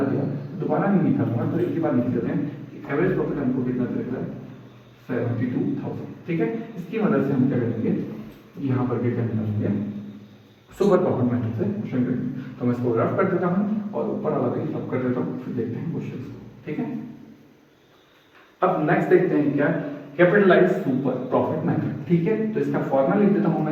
दिया, दोबारा नहीं निकालूंगा, तो एक ही बार निकाल देते हैं कि एवरेज प्रॉफिट हमको कितना दे रहा है, 72,000, ठीक है। इसकी मदद से हम क्या करेंगे, यहाँ पर क्या निकालेंगे, सुपर प्रॉफिट मेथड से क्वेश्चन करेंगे। तो मैं इसको रफ कर देता हूँ और ऊपर वाला भी रफ कर देता हूँ, फिर देखते हैं क्वेश्चन को, ठीक है। अब नेक्स्ट देखते हैं क्या, कैपिटलाइज सुपर प्रॉफिट मेथड, ठीक है। तो इसका फॉर्मूला लिख देता हूं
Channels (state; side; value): identical; both; correlation 1.00